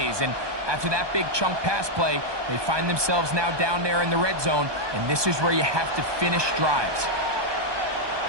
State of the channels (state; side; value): late; left; 1.2 ms